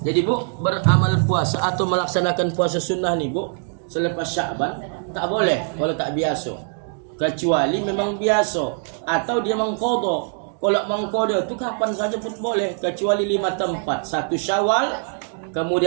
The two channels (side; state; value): left; silent; 60 dB below the other